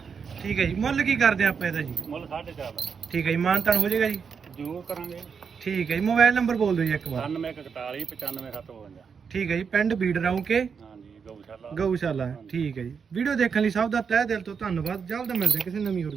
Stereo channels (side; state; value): left; quieter; 6.2 dB